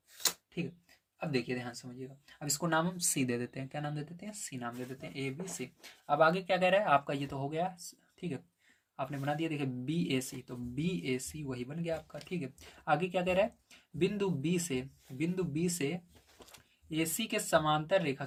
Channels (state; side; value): identical; both; correlation 1.00